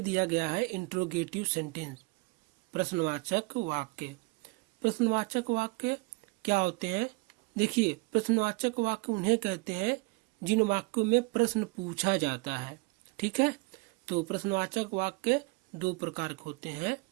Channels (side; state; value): left; quieter; 27.3 dB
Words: गया है इंट्रोगेटिव सेंटेंस, प्रश्नवाचक वाक्य। प्रश्नवाचक वाक्य क्या होते हैं? देखिए, प्रश्नवाचक वाक्य उन्हें कहते हैं जिन वाक्यों में प्रश्न पूछा जाता है। ठीक है, तो प्रश्नवाचक वाक्य दो प्रकार के होते हैं।